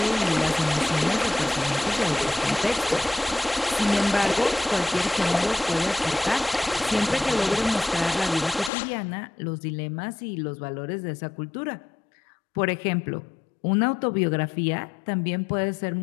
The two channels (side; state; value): right; drops out; at 8.7 s